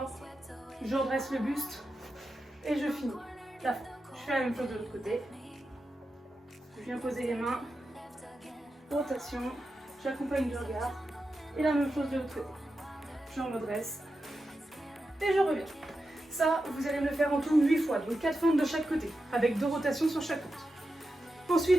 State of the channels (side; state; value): both; normal; correlation 0.90